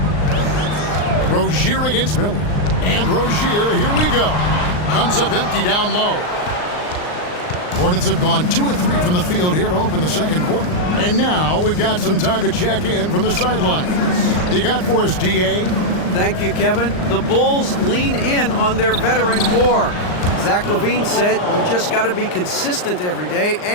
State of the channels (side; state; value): right; late; 39 ms